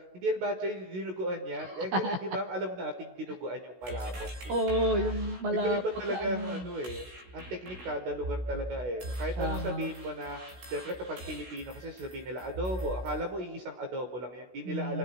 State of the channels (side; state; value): left; late; 16 ms